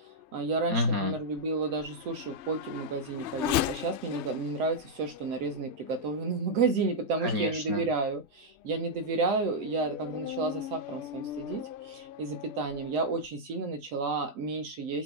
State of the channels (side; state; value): left; late; 3.2 ms